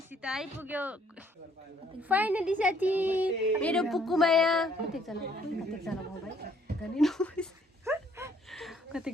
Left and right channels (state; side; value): normal; both; correlation 0.64